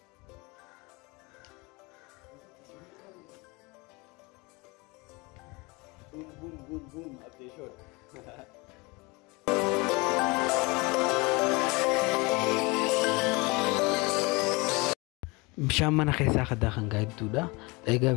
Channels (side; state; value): right; quieter; 26.1 dB